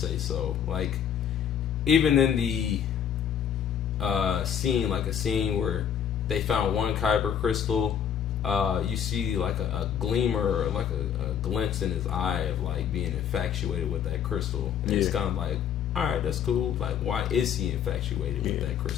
so. Like even in the scene, like a scene where they found one kyber crystal, you see like a gleamer, or like a glimpse in his eye of like being infatuated with that crystal. And it's kind of like, all right, that's cool. Like, why is he infatuated with that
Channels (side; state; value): right; quieter; 8.5 dB